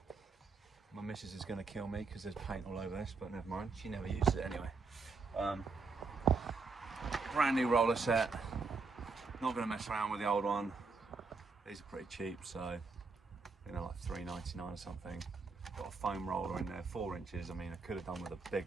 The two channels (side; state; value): left; quieter; 4.3 dB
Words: My missus is going to kill me because there's paint all over this, but never mind. She never uses it anyway. Brand new roller set. Not going to mess around with the old one. These are pretty cheap, so you know, like $3.99 or something. Got a foam roller in there, 4 inches. I mean, I could have done with a